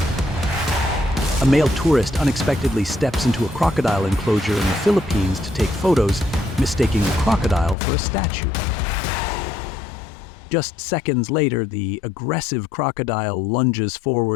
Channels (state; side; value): drops out; right; at 7.8 s